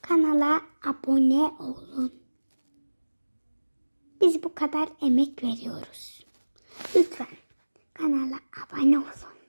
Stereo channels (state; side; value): inverted; both; correlation -1.00